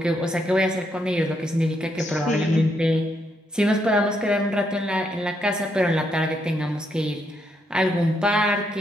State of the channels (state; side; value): normal; both; correlation 0.77